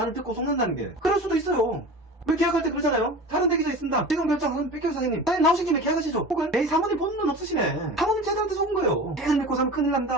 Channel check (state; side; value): normal; both; correlation 0.35